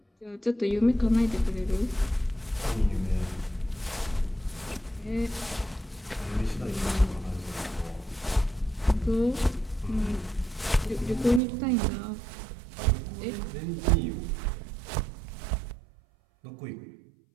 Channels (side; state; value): left; drops out; at 11.4 s